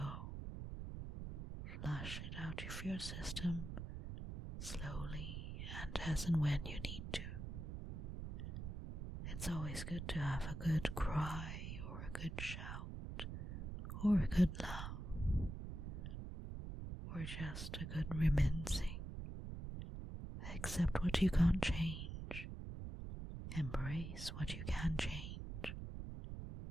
Flush it out of your system slowly and as and when you need to. It's always good to have a good cry or a good shout or a good laugh or just a good reminiscing. Accept what you can't change. Embrace what you can change.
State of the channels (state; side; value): noise; right; rumble, 6 dB below the sound